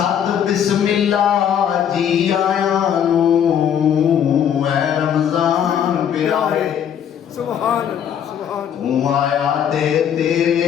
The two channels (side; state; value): right; quieter; 8.9 dB